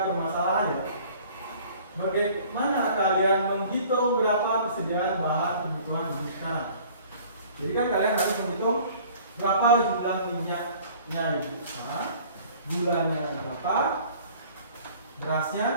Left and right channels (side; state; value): both; inverted; correlation -0.51